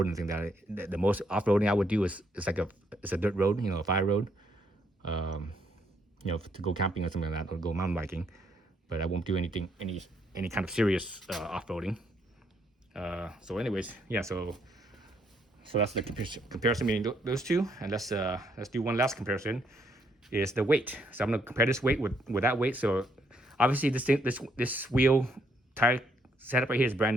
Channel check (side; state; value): both; normal; correlation 0.72